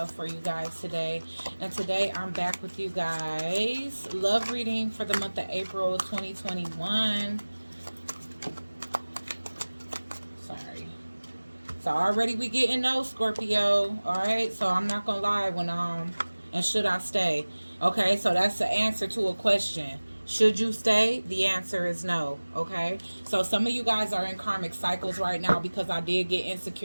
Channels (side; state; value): both; inverted; correlation -1.00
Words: for you guys today. And today I'm back with you guys. Love reading for the month of April 2021. Sorry. So already we getting no Scorpio. Alright, so I'm not gonna lie when and should I stay? Okay, so that's the answer to a question. Should you stay? The answer is no. Okay, so some of you guys are in karmic cycles right now because I did get